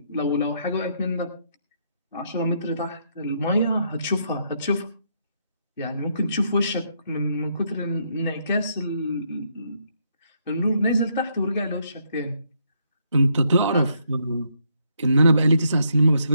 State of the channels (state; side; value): inverted; both; correlation -0.74